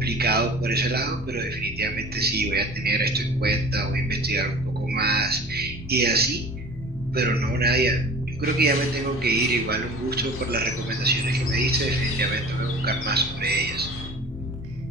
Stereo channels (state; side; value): normal; both; correlation 0.42